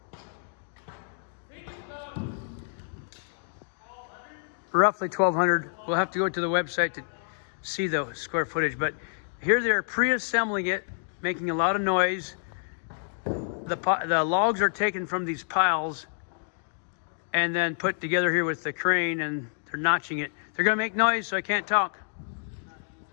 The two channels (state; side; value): silent; right; digital silence